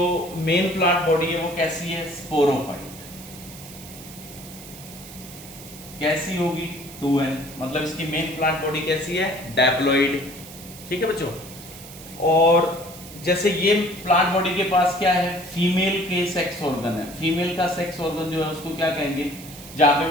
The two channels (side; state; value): right; noise; hiss, 16 dB below the sound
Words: मेन प्लांट बॉडी है वो कैसी है? स्पोरोफाइट। कैसी होगी? 2n, मतलब इसकी मेन प्लांट बॉडी कैसी है? डायप्लॉइड। ठीक है बच्चों। और जैसे ये प्लांट बॉडी के पास क्या है? फीमेल के सेक्स ऑर्गन है। फीमेल का सेक्स ऑर्गन जो है उसको क्या कहेंगे? जहां पे